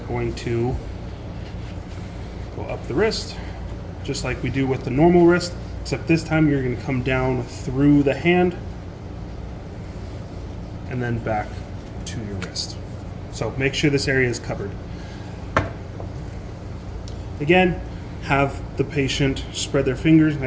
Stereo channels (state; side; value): identical; both; correlation 1.00